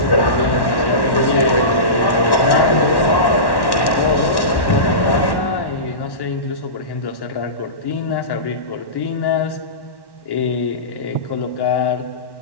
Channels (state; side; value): late; right; 1.1 ms